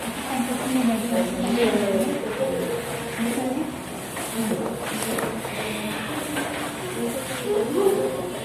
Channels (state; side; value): identical; both; correlation 1.00